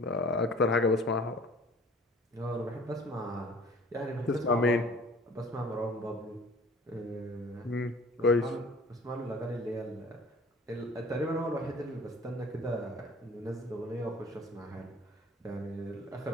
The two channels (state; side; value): normal; both; correlation 0.48